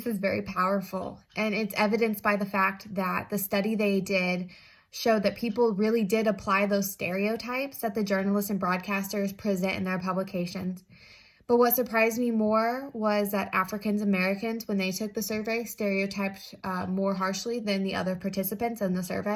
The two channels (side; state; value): both; identical; correlation 1.00